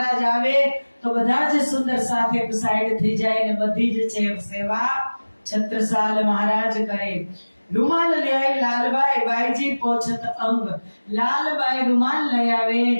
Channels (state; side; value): inverted; both; correlation -1.00